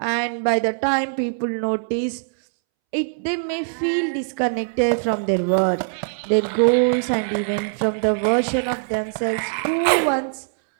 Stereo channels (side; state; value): left; silent; 64 dB below the other